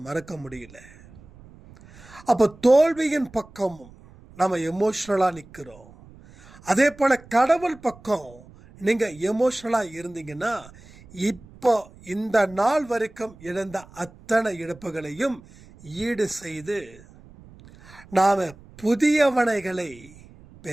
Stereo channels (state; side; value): noise; right; rumble, 22 dB below the sound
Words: மறக்க முடியல. அப்ப தோல்வியின் பக்கமும் நம்ம எமோஷனலா நிற்கிறோம். அதே போல கடவுள் பக்கம் நீங்க எமோஷனலா இருந்தீங்கன்னா இப்போ இந்த நாள் வரைக்கும் இழந்த அத்தனை இழப்புகளையும் ஈடு செய்து நாம புதியவனைகளை